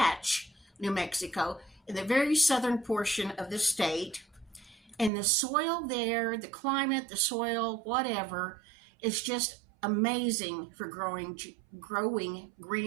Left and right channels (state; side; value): drops out; left; at 5.1 s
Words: New Mexico, in the very southern portion of the state. And the soil there, the climate, the soil, whatever, is just amazing for growing